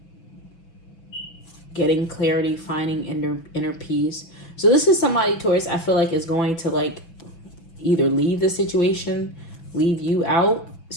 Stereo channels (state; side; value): late; right; 6.0 ms